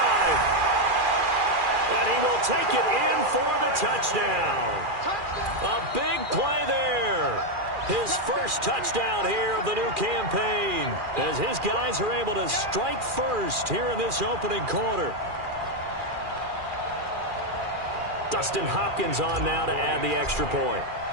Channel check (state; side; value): late; left; 2.4 ms